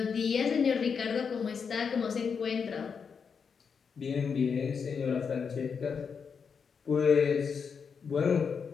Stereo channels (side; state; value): right; quieter; 6.1 dB